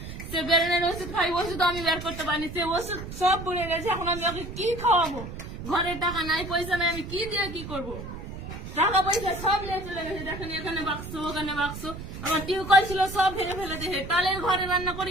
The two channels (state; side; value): noise; right; rumble, 9 dB below the sound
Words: সে বেরেনের ওষুধ খাই, ওষুধ আমি বের করতে পারিনি। সে ওষুধ সব বলে গেছে। এখন আমি ওকে কি খাওয়াবো? ঘরে টাকা নাই, পয়সা নাই, আমি কি দিয়ে কি করবো? টাকা পয়সা সব নিয়ে চলে গেছে। দেখেন, এখানে বাক্স, ওখানে বাক্স। আমার টিউবকল ছিল, সব ভেঙে ফেলে দিয়েছে। তালের ঘরে রান্না